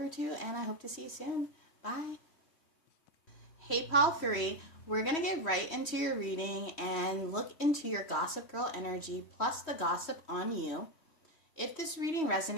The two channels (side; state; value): right; late; 3.1 ms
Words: 2, and I hope to see you soon. Bye. Hey, pile 3, we're going to get right into your reading and look into your gossip girl energy plus the gossip on you. If this reading